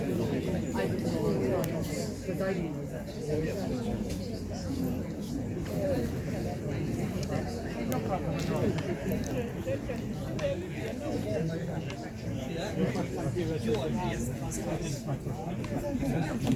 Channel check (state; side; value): identical; both; correlation 1.00